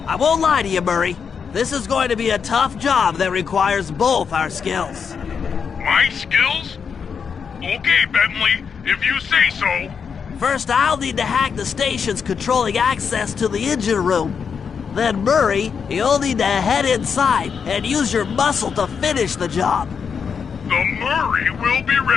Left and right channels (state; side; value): quieter; right; 6.4 dB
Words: I won't lie to you, Murray. This is going to be a tough job that requires both our skills. My skills? Okay, Bentley, if you say so. First, I'll need to hack the stations controlling access to the engine room. Then, Murray, you'll need to head inside and use your muscle to finish the job. The Murray will be